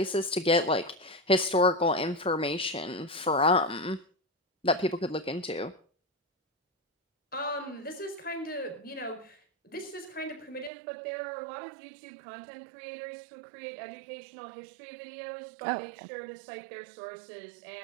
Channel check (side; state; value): left; drops out; at 10.7 s